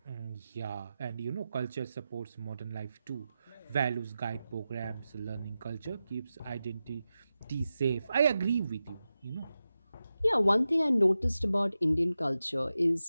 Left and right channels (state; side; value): inverted; both; correlation -0.92